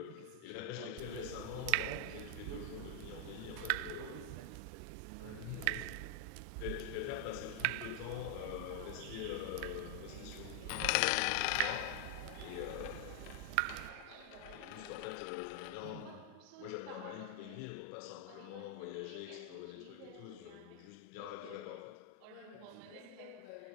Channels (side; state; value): both; different; correlation 0.00